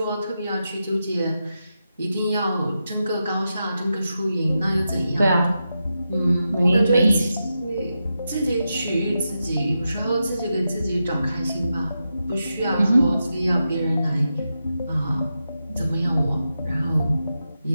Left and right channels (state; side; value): inverted; both; correlation -0.88